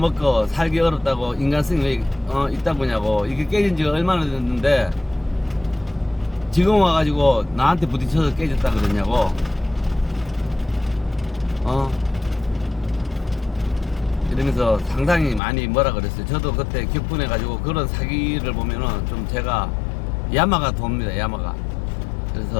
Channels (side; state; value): right; drops out; at 15.4 s